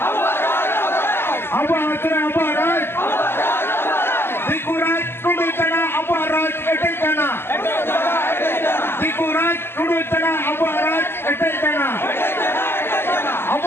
tunduk tanah Abu Araj ketek tanah.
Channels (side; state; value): right; late; 0.11 ms